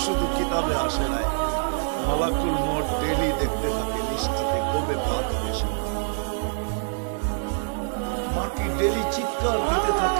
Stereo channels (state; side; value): silent; left; 62 dB below the other